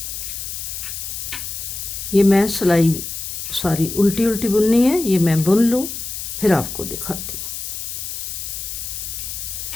ये मैं सिलाई सारी उल्टी उल्टी बुननी है, ये मैं बुन लूँ फिर आपको दिखाती हूँ।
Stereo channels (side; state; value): left; noise; hiss, 6 dB below the sound